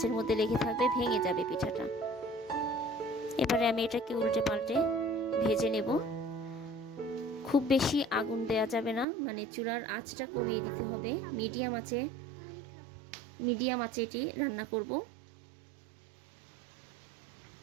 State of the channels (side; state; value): left; drops out; at 9.1 s